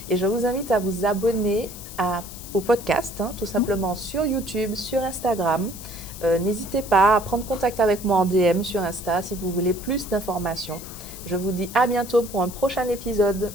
Et je vous invite à vous abonner au podcast, tout simplement sur YouTube, sur Instagram. N'hésitez pas à prendre contact avec moi en DM sur Insta si vous voulez plus d'informations. Je vous dis à bientôt pour un prochain épisode.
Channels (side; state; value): left; noise; hiss, 14 dB below the sound